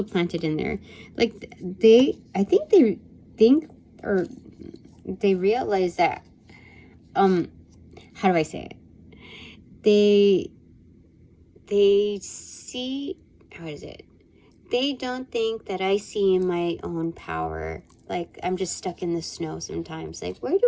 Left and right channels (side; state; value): both; identical; correlation 1.00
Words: planted in there. Like, I think they think, or they realize that, how do I say it? They see, how is it? They don't think that I see my own power. Like, I'm just stuck in the snow sometimes. Like, where did